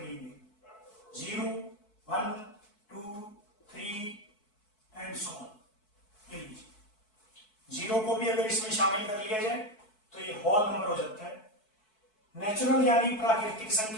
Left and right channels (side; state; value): right; late; 4.6 ms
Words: 0, 1, 2, 3 एंड सो ऑन। 0 को भी अगर इसमें शामिल कर लिया जाए तो ये होल नंबर हो जाता है। नेचुरल यानी प्राकृतिक